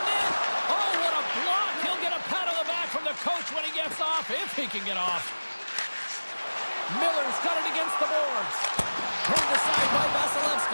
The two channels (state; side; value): inverted; both; correlation -1.00